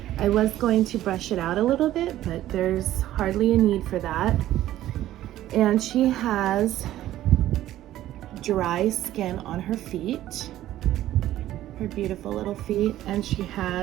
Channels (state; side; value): quieter; left; 13.7 dB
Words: I was going to brush it out a little bit, but there's hardly a need for that. And she has dry skin on her feet, her beautiful little feet, and she